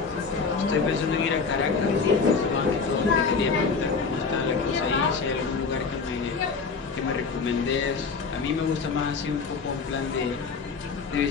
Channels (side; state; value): right; quieter; 5.0 dB